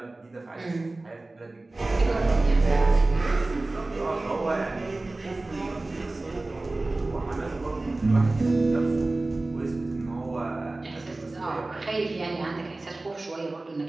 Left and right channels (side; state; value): left; quieter; 3.0 dB